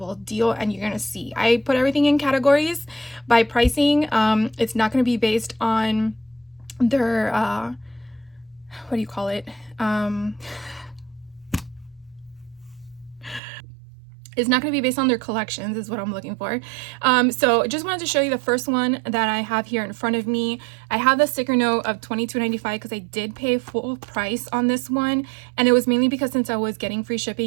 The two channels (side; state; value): left; drops out; at 13.4 s